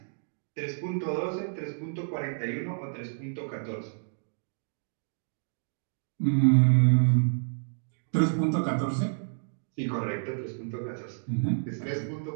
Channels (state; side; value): silent; left; digital silence